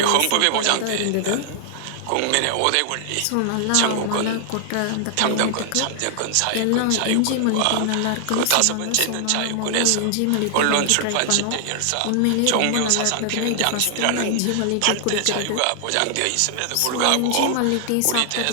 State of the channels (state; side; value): different; both; correlation 0.00